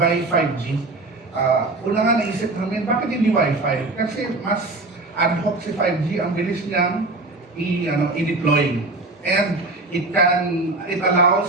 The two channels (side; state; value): left; quieter; 3.1 dB